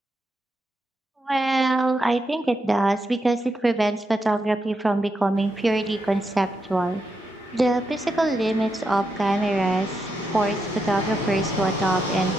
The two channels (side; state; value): both; normal; correlation 0.83